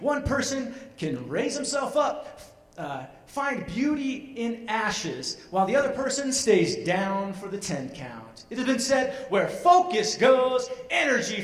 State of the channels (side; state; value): both; identical; correlation 1.00